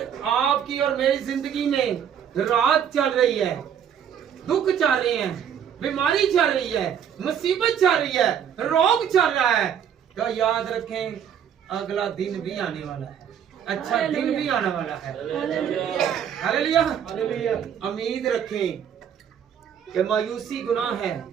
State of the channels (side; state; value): left; quieter; 8.6 dB